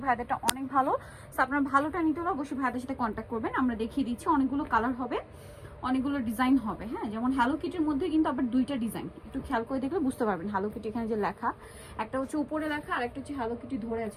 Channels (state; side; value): identical; both; correlation 1.00